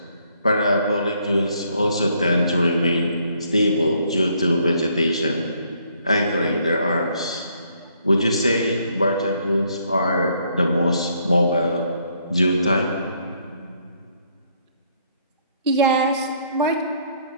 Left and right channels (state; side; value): inverted; both; correlation -0.68